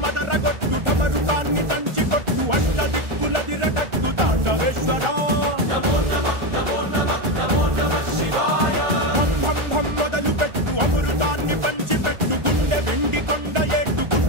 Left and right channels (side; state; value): left; late; 1.4 ms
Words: మదరగొట్టు ఢమరుకాన్ని దంచి కొట్టు అంట దిక్కులదిరగట్టు తాండవేశ్వర భం మొదలు పెట్టు అమృతాన్ని పంచి పెట్టు గుండె వెండి కొండ ఏట్టు